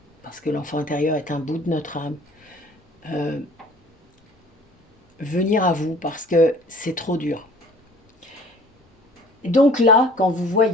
parce que l'enfant intérieur est un bout de notre âme, venir à vous parce que c'est trop dur. Et donc là, quand vous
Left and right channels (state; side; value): normal; both; correlation 0.51